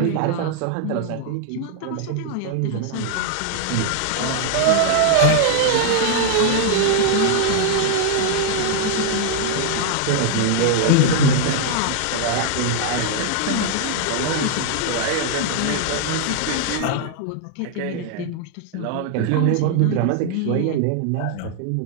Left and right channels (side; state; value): both; different; correlation 0.00